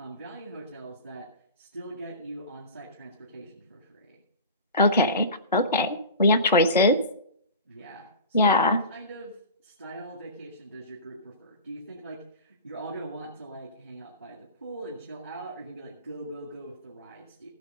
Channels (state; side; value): inverted; both; correlation -0.33